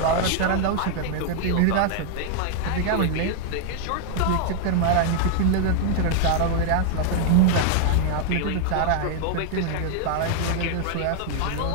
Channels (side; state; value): both; different; correlation 0.00